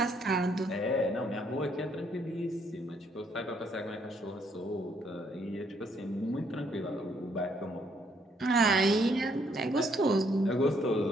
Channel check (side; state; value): both; normal; correlation 0.69